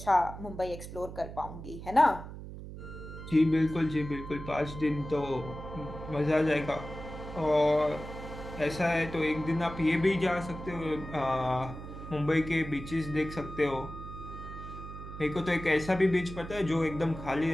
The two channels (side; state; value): right; noise; hum, 11 dB below the sound